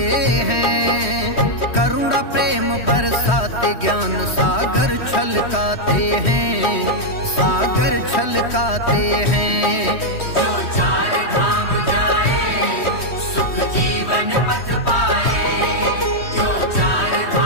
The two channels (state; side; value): late; right; 3.1 ms